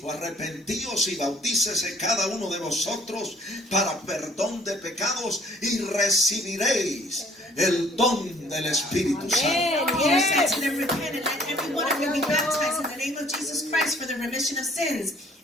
arrepentíos y bautícese cada uno de vosotros para perdón de pecados y recibiréis el don del Espíritu Santo. Peter said to them, repent and let every one of you be baptized in the name of Jesus Christ for the remission of sins,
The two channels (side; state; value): both; normal; correlation 0.57